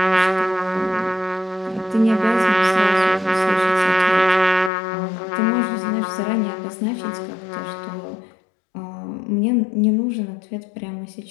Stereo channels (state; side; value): drops out; right; at 4.7 s